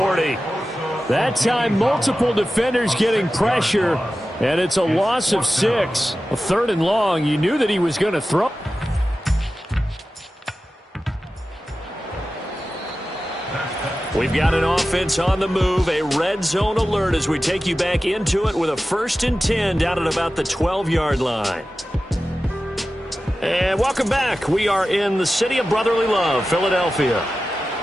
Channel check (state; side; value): normal; both; correlation 0.94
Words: That time, multiple defenders getting pressure, and it's a loss of 6. A 3rd and long. You knew that he was going to throw. We've got an offense on the move, a red zone alert as we take you back into it with a 1st and 10 down at about the 12-yard line. And welcome back. We are in the city of brotherly love, Philadelphia.